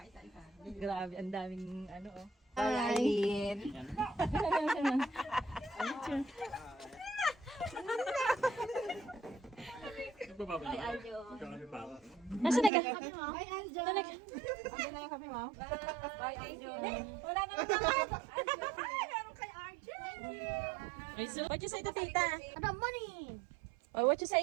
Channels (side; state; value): left; drops out; at 12.7 s